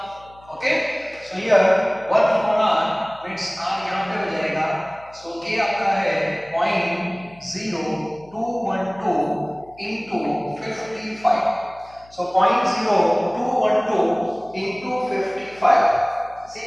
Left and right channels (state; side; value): noise; left; hum, 26 dB below the sound